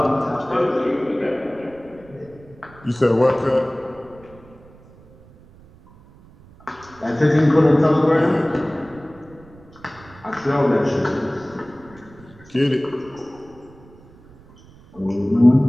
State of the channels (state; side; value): noise; right; rumble, 24 dB below the sound